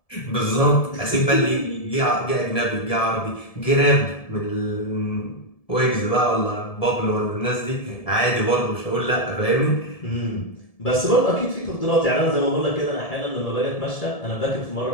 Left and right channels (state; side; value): late; right; 1.7 ms